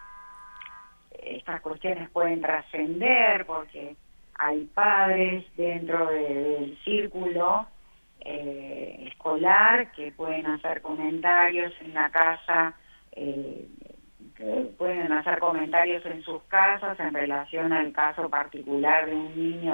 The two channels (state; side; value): inverted; both; correlation -1.00